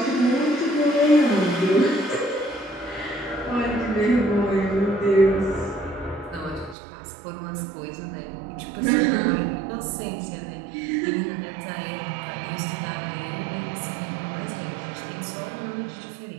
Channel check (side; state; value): left; drops out; at 6.8 s